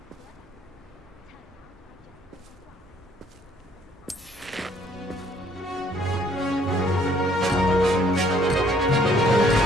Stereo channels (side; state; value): both; normal; correlation 0.63